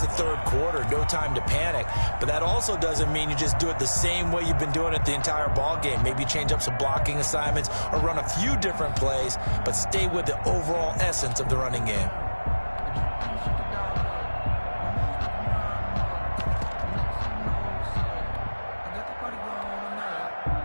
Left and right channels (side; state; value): both; inverted; correlation -1.00